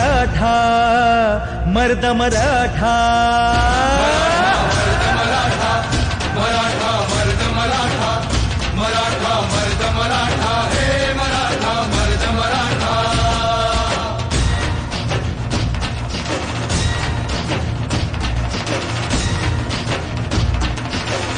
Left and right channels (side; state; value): both; identical; correlation 1.00